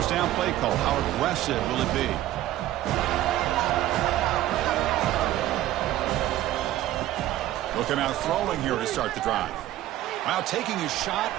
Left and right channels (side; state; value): left; quieter; 14.3 dB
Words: down play call. How aggressive will it be? He'll come out throwing here to start the drive. Wow, taking a shot